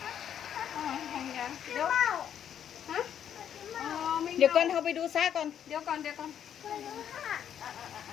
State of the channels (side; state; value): right; quieter; 9.3 dB